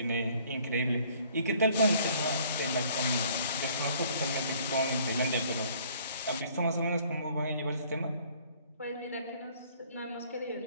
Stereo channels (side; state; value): both; inverted; correlation -0.58